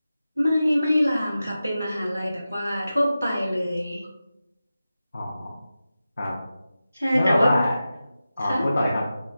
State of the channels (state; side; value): inverted; both; correlation -0.93